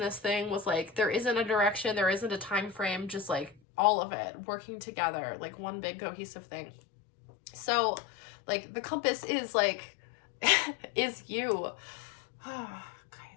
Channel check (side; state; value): right; drops out; at 3.6 s